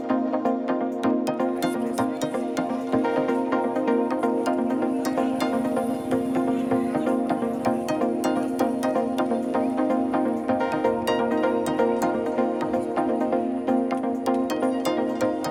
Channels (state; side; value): identical; both; correlation 1.00